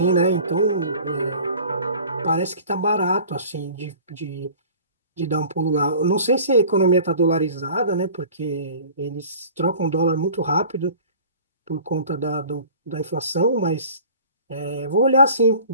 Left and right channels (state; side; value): inverted; both; correlation -0.45